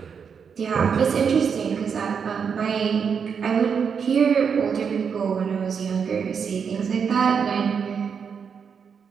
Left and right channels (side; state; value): left; quieter; 6.6 dB